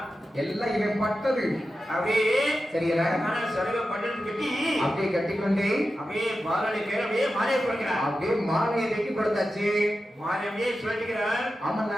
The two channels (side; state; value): both; normal; correlation 0.92